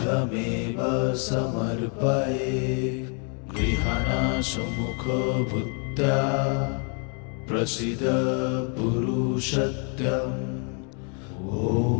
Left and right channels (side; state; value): right; quieter; 39.2 dB